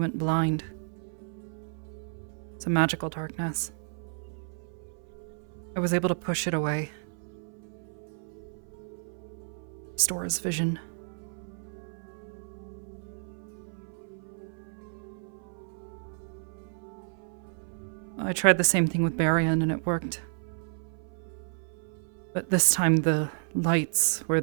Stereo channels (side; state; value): left; silent; 57 dB below the other